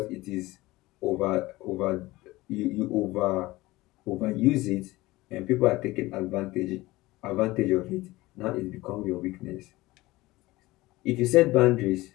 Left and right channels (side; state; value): right; quieter; 19.4 dB